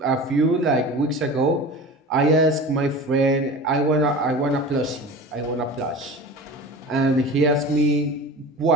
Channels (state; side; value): normal; both; correlation 0.34